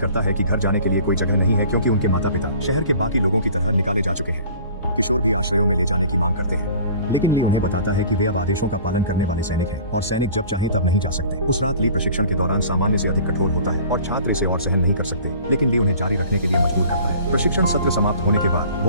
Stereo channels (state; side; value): inverted; both; correlation -0.47